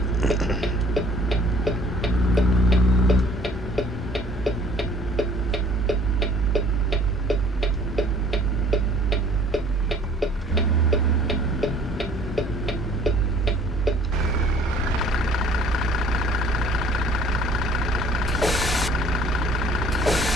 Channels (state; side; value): normal; both; correlation 0.54